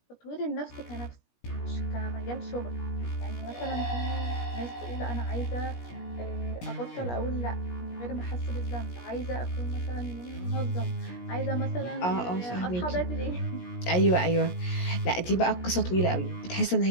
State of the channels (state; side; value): late; right; 17 ms